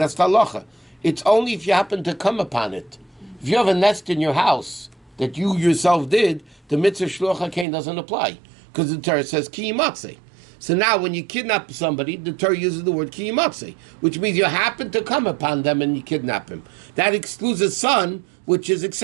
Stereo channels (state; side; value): drops out; left; at 7.7 s